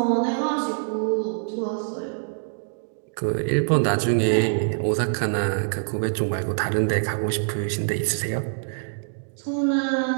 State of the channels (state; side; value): silent; left; digital silence